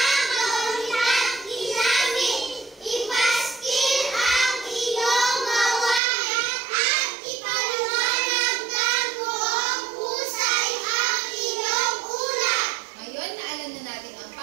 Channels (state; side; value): drops out; left; at 6.0 s